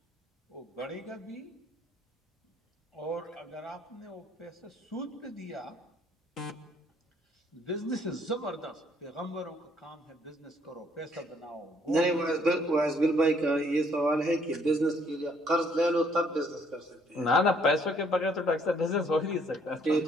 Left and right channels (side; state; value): both; normal; correlation 0.65